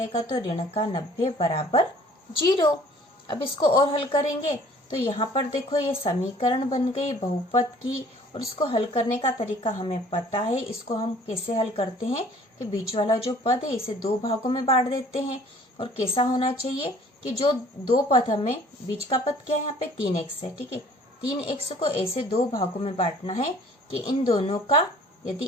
तो ऋण का 90 बराबर 0। अब इसको और हल करेंगे तो यहाँ पर देखो ये समीकरण बन गई बहुपद की, और इसको हल करने का तरीका हमें पता है। इसको हम कैसे हल करते हैं कि बीच वाला जो पद है इसे 2 भागों में बांट देते हैं। और कैसा होना चाहिए कि जो 2 पद हमें, बीच का पद क्या है यहाँ पे 3x है, ठीक है, 3x को ऐसे 2 भागों में बांटना है कि इन दोनों का, यदि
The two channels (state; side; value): normal; both; correlation 0.53